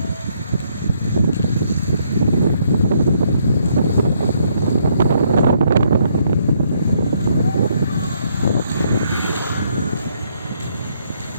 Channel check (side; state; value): both; inverted; correlation -0.71